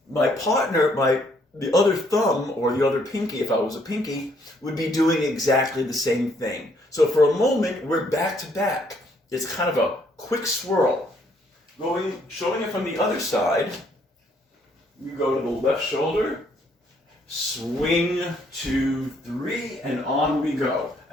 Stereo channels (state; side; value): normal; both; correlation 0.68